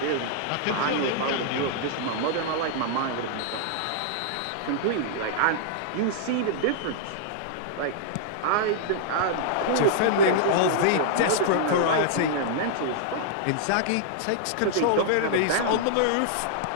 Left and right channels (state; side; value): different; both; correlation -0.01